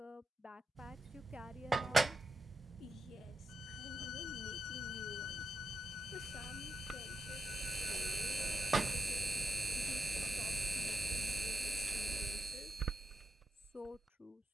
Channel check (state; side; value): normal; both; correlation 0.87